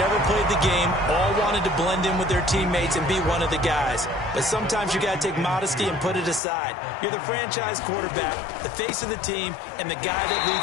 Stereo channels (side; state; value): right; drops out; at 6.4 s